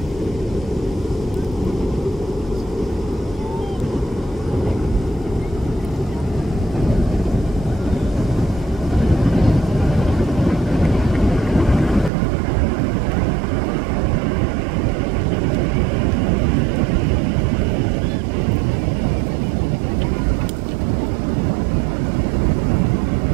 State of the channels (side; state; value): left; drops out; at 12.1 s